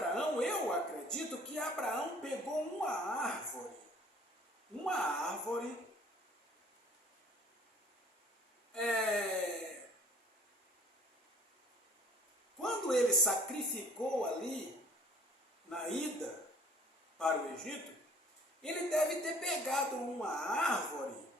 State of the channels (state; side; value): normal; both; correlation 0.53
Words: eu acredito que Abraão pegou uma árvore, quando ele sacrificou ali, na ida para o Egito, ele deve ter pegado uma árvore